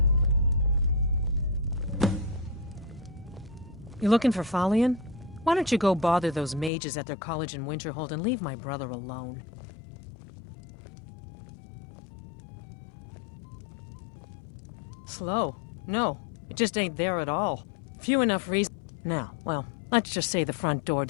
You looking for Falion? Why don't you go bother those mages at their college in Winterhold and leave my brother alone? Slow? No, it just ain't there at all. Few enough reasons. Now, well, let's just say the front door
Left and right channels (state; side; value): drops out; right; at 6.7 s